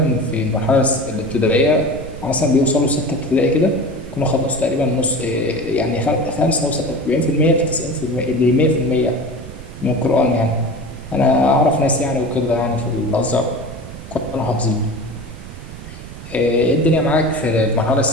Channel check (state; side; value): noise; right; rumble, 13 dB below the sound